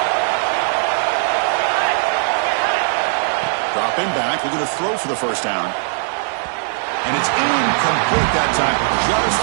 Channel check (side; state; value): left; silent; 67 dB below the other